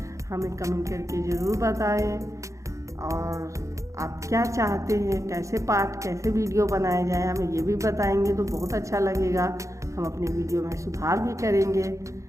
हमें कमेंट करके ज़रूर बताएं। और आप क्या चाहते हैं, कैसे पाठ कैसे वीडियो बनाए जाए, हमें ये भी बताएंगे तो बहुत अच्छा लगेगा। हम अपने वीडियो में सुधार भी करेंगे।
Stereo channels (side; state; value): left; late; 0.15 ms